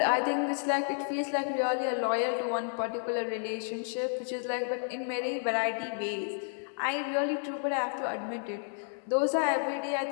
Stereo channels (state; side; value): silent; right; digital silence